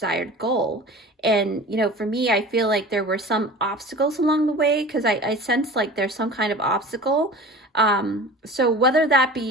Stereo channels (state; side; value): normal; both; correlation 0.38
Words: goal. And, you know, for me, I feel like there were some obstacles along the way, because I sense like there's some kind of obstacle. So whether that